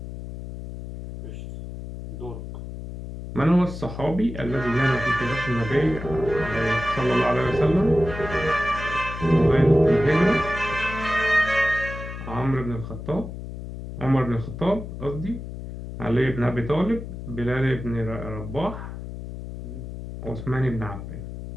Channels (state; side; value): noise; left; hum, 9 dB below the sound